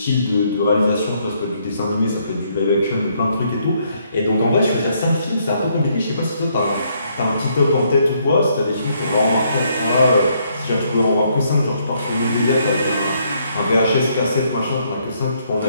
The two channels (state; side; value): inverted; both; correlation -0.71